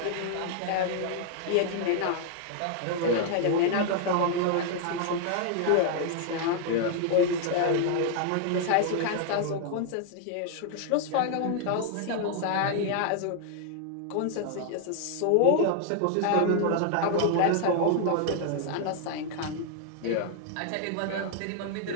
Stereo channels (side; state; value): both; different; correlation 0.00